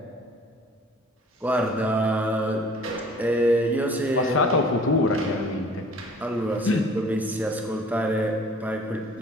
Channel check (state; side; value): normal; both; correlation 0.51